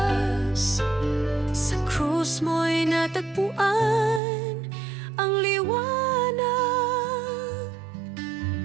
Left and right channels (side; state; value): left; drops out; at 4.2 s